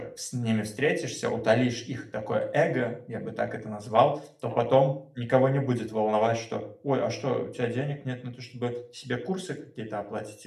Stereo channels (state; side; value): identical; both; correlation 1.00